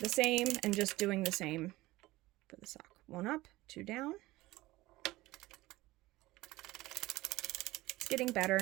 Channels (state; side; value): quieter; left; 18.6 dB